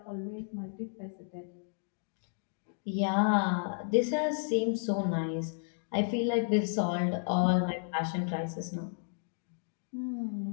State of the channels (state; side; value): silent; right; digital silence